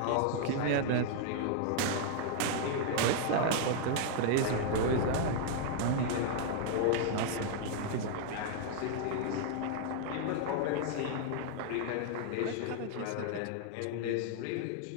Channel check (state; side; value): different; both; correlation 0.00